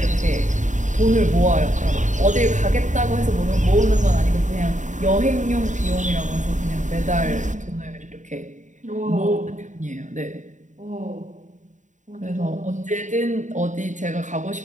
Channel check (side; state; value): left; late; 0.36 ms